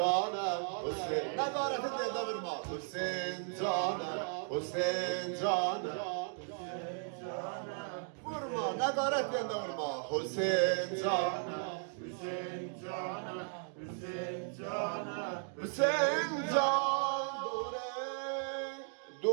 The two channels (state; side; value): silent; left; 54 dB below the other